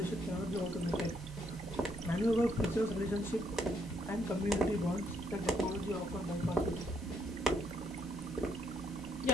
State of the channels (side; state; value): both; normal; correlation 0.73